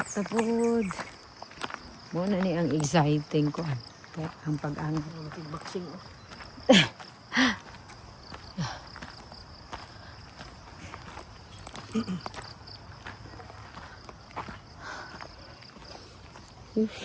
na pod. Muna ni ang exciting ko. Kaya ang pag-angat. Boxing oh.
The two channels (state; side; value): identical; both; correlation 1.00